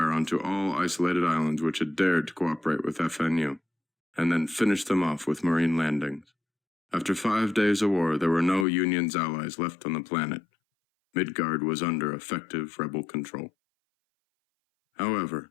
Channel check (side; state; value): right; drops out; at 8.7 s